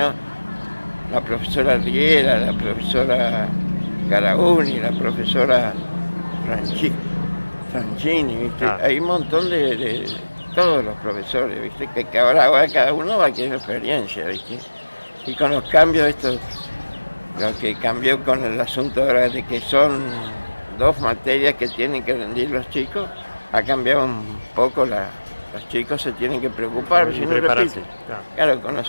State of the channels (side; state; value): both; inverted; correlation -1.00